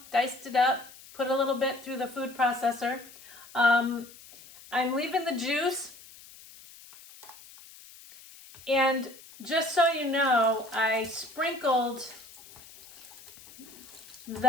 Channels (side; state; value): left; noise; hiss, 20 dB below the sound